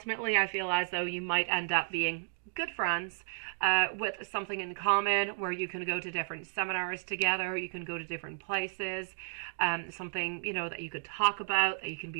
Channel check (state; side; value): silent; left; digital silence